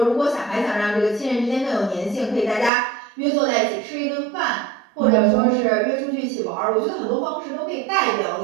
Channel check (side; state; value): left; drops out; at 2.7 s